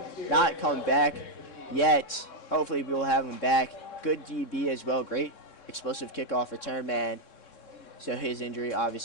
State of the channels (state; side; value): late; right; 3.6 ms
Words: not come back yet. Hopefully we will have him back. Good DB as well, great explosive kickoff return man. So his injury